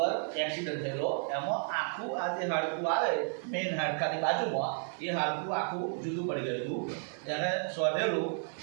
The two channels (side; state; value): left; silent; 56 dB below the other